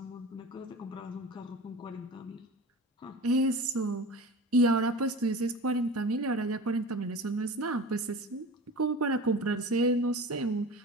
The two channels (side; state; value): both; normal; correlation 0.34